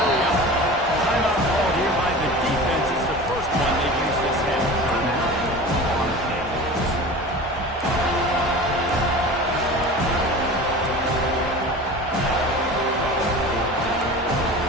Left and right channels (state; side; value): normal; both; correlation 0.35